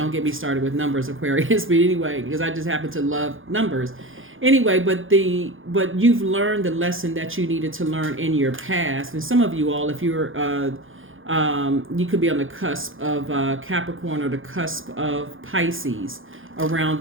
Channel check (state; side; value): late; left; 0.58 ms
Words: get me started with numbers, Aquarius. But anyway, because I just happen to love numbers. Anyway, but you've learned the lesson that you needed to learn in your past. And some of you all, if you're you could be on the cusp of Capricorn or the cusp of Pisces around